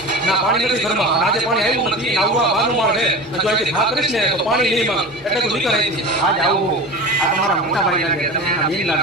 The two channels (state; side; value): normal; both; correlation 0.30